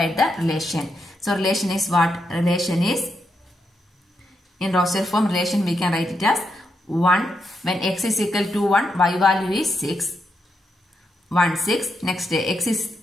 the relation. So relation is what? Relation is, in roster form relation we can write it as 1. When x is equal to 1, y value is 6. 1, 6. Next x is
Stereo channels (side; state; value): both; normal; correlation 0.83